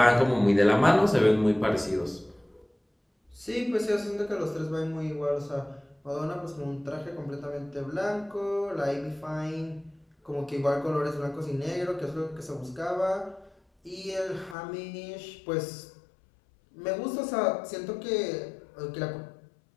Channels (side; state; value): right; drops out; at 14.6 s